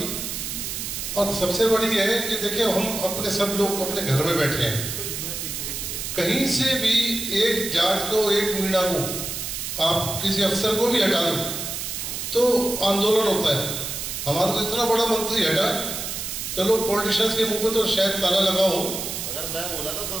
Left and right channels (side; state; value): right; noise; hiss, 5 dB below the sound